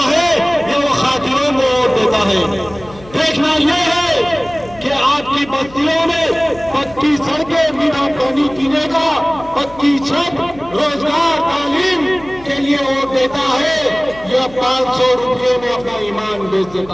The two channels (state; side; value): noise; left; hum, 21 dB below the sound